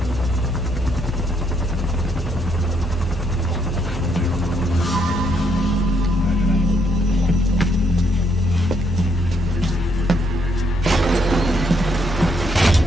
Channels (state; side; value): normal; both; correlation 0.73